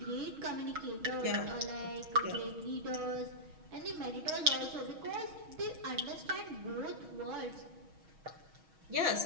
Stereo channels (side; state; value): left; late; 6.3 ms